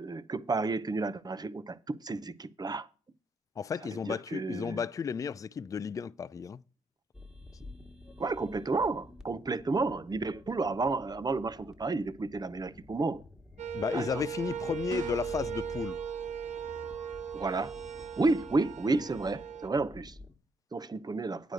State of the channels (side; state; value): both; normal; correlation 0.72